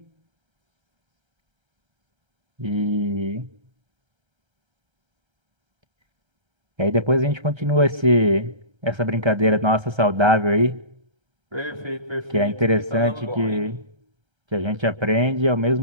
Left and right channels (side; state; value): left; late; 1.3 ms